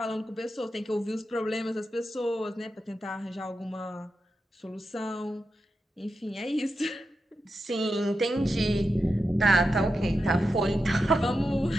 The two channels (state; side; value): normal; both; correlation 0.89